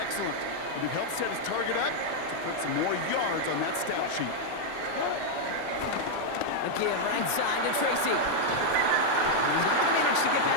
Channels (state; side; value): different; both; correlation -0.01